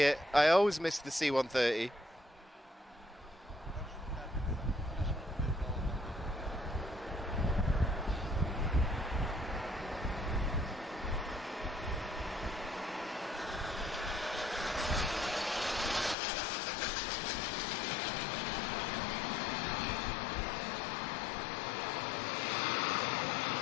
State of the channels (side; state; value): right; drops out; at 16.2 s